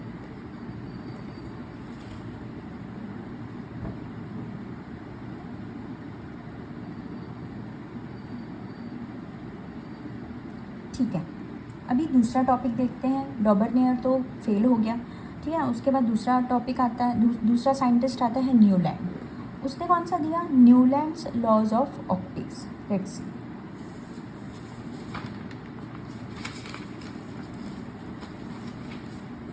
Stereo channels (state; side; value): identical; both; correlation 1.00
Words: ठीक है, अभी दूसरा टॉपिक देखते हैं। डॉबर्नियर तो फेल हो गया, ठीक है। उसके बाद दूसरा टॉपिक आता है, दूसरा साइंटिस्ट आता है न्यूलैंड। उसने कौन सा दिया, Newlands laws of octaves. Let's see.